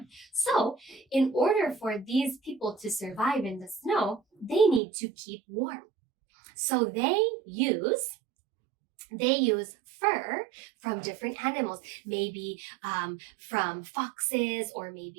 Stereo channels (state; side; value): drops out; left; at 4.8 s